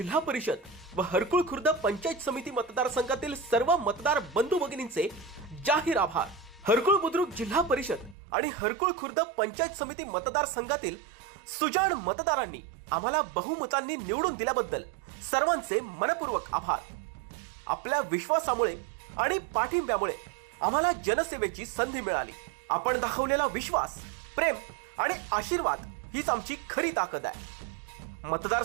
परिषद व हरकुळ खुर्द पंचायत समिती मतदारसंघातील सर्व मतदार बंधू भगिनींचे जाहीर आभार. हरकुळ बुद्रुक जिल्हा परिषद आणि हरकुळ खुर्द पंचायत समिती मतदारसंघातील सुजाण मतदारांनी आम्हाला बहुमतांनी निवडून दिल्याबद्दल सर्वांचे मनपूर्वक आभार. आपल्या विश्वासामुळे आणि पाठिंब्यामुळे आम्हाला जनसेवेची संधी मिळाली. आपण दाखवलेला विश्वास, प्रेम आणि आशीर्वाद हीच आमची खरी ताकद आहे.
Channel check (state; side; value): drops out; left; at 8.2 s